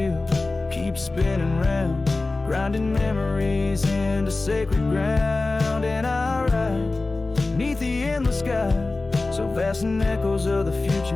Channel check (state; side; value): quieter; right; 3.3 dB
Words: keeps spinning round, grinding memories into sacred ground. And I ride neath the endless sky, so vast and echoes of the